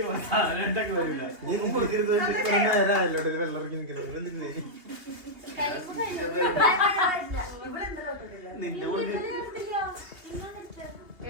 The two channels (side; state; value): left; late; 2.8 ms